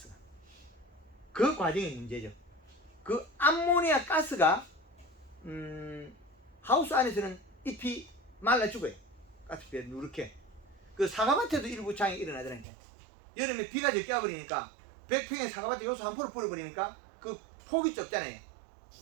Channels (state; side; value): drops out; left; at 12.7 s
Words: 그 과정이 문제죠. 그 암모니아 가스가 하우스 안에서는 잎이 말라 죽어요. 가스비에 누렇게. 그 사과밭에도 일부 장이 일어나더라니까. 여름에 비가 적게 와버리니까 100평의 사과밭에 요소 한 포를 뿌려버리니까 그 폭이 좁잖아요.